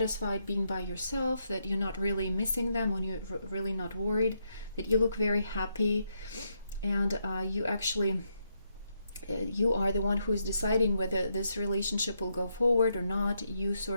being by yourself, that you're not really missing them, or you're really not worried, that you look very happy, and you actually you are the one who is deciding whether this relationship will go forward or not. You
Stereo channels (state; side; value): inverted; both; correlation -0.79